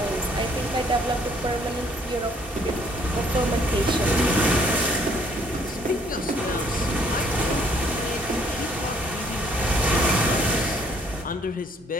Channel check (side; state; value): both; normal; correlation 0.63